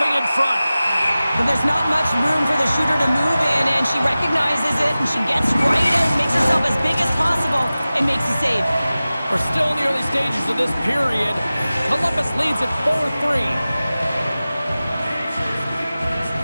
in front. But there's not much room for the shooter to move in, and she recognizes it, and she gets right out, makes herself as big as possible, and makes a save. We're still in the early stages of this period. Columbus leads at 4-3.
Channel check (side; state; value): both; inverted; correlation -0.96